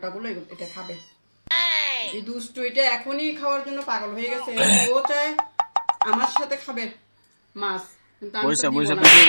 গুলো এটা খাবে। এই দুষ্টু এটা এখনই খাওয়ার জন্য পাগল হয়ে গেছে। ও চায় আমার সাথে খাবে মাছ, কিন্তু আমি তো বইসা দিব বইসা না। ভিডিও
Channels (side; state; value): both; inverted; correlation -1.00